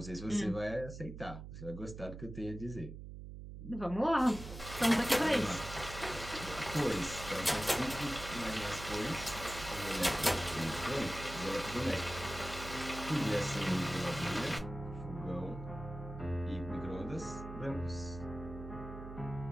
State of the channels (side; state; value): right; noise; hum, 10 dB below the sound